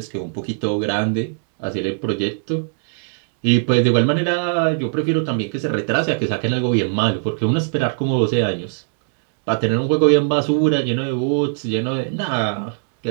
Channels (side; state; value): left; silent; digital silence